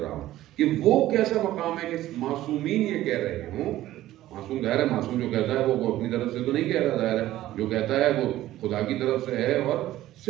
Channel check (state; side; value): quieter; left; 14.6 dB